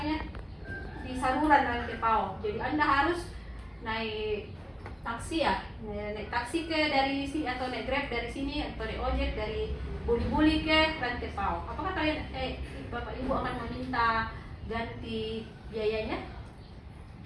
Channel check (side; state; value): both; identical; correlation 1.00